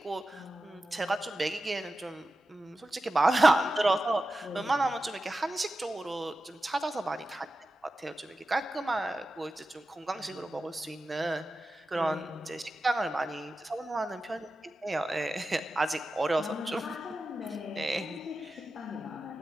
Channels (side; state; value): both; normal; correlation 0.92